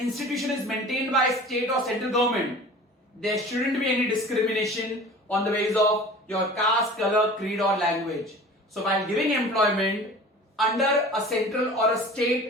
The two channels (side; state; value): both; normal; correlation 0.41